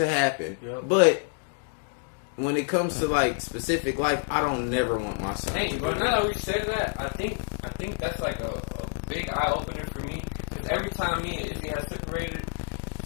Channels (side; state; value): right; silent; digital silence